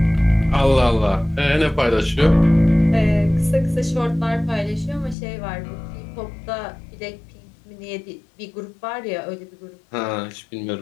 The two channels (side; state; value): right; drops out; at 5.2 s